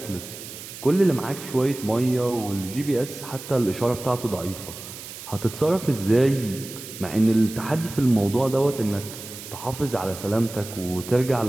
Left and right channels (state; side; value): noise; right; hiss, 13 dB below the sound